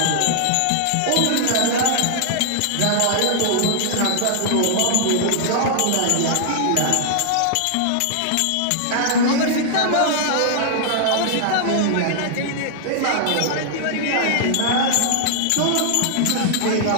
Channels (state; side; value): different; both; correlation -0.01